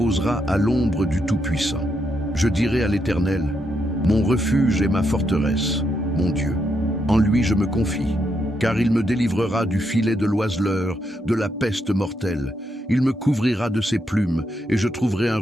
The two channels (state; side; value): normal; both; correlation 0.80